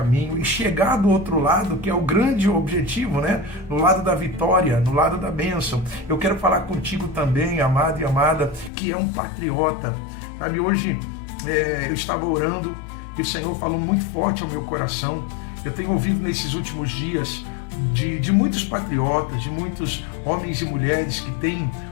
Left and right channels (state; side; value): drops out; right; at 8.7 s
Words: e chegar do outro lado, que é o grande objetivo, né? No lado da vitória, no lado da bênção. Eu quero falar contigo também, amado e amada, que é um patriota. Sabe, hoje eu estava orando e o Senhor falou muito forte ao meu coração. Eu tenho ouvido nesses últimos dias de muitos patriotas, de muitos homens e mulheres que têm